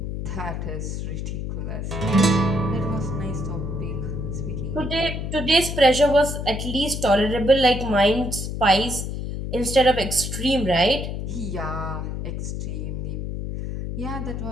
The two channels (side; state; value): left; noise; hum, 4 dB below the sound